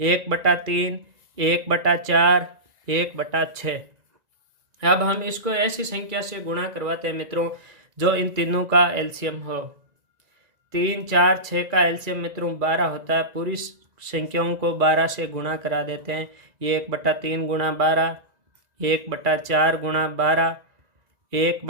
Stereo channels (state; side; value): late; left; 1.9 ms